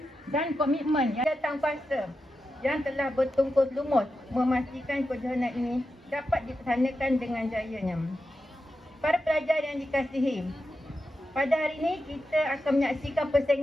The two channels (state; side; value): normal; both; correlation 0.89